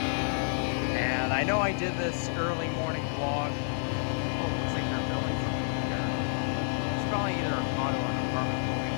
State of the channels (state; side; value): silent; right; 58 dB below the other